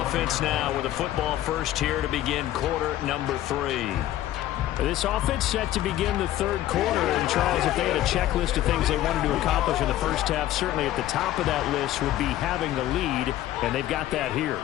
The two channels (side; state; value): right; quieter; 13.6 dB